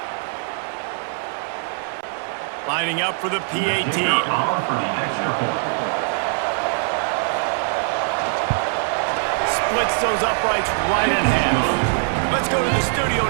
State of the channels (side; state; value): left; silent; 57 dB below the other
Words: Lining up for the PAT. Splits those uprights right in half. Let's go to the studio